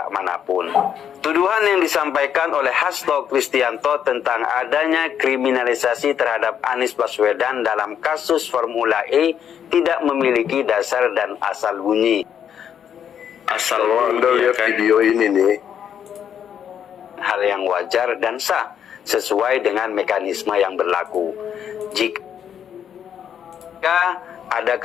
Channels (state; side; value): quieter; right; 8.8 dB